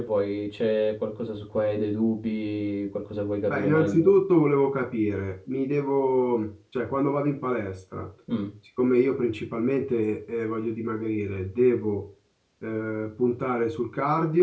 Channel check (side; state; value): both; identical; correlation 1.00